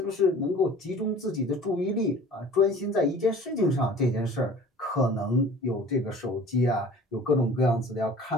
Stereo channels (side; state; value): both; normal; correlation 0.45